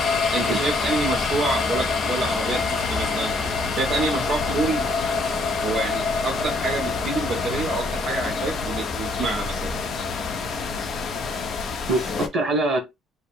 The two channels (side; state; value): both; normal; correlation 0.65